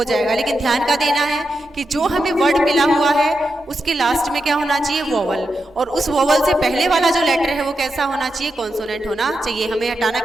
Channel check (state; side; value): normal; both; correlation 0.87